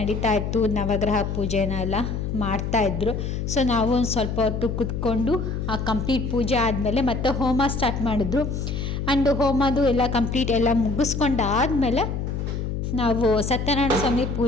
ಇತ್ತು, ನವಗ್ರಹ ಪೂಜೆನೆಲ್ಲ ಮಾಡ್ತಾಯಿದ್ರು. ಸೊ ನಾವು ಒಂದು ಸ್ವಲ್ಪ ಹೊತ್ತು ಕೂತ್ಕೊಂಡು ಆ ಕಂಪ್ಲೀಟ್ ಪೂಜೆ ಆದಮೇಲೆ ಮತ್ತೆ ಹೋಮ ಸ್ಟಾರ್ಟ್ ಮಾಡಿದ್ರು. ಆ್ಯಂಡ್ ಹೋಮದು ಎಲ್ಲ ಕಂಪ್ಲೀಟ್ ಎಲ್ಲ ಮುಗಿಸ್ಕೊಂಡಾದಮೇಲೆ ನಾವು ಸತ್ಯನಾರಾಯಣ ಸ್ವಾಮಿ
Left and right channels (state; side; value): noise; left; hum, 3 dB below the sound